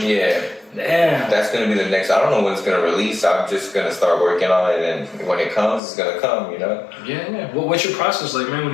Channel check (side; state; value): right; drops out; at 5.8 s